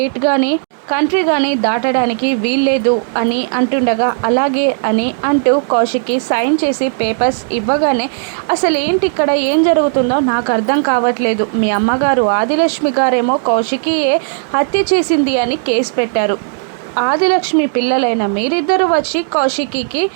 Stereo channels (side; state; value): left; silent; digital silence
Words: కానీ కంట్రీ కానీ దాటడానికి వీల్లేదు అని అంటుండగా, అలాగే అని అంటూ కౌశికి సైన్ చేసి పేపర్స్ ఇవ్వగానే, అసలు ఏంటి ఇక్కడ ఏం జరుగుతుందో నాకు అర్థం కావట్లేదు, మీ అమ్మగారు ఆదిలక్ష్మి గారేమో కౌశికియే హత్య చేసింది అని కేసు పెట్టారు, ఆదిలక్ష్మి పిల్లలైన మీరిద్దరూ వచ్చి కౌశికికి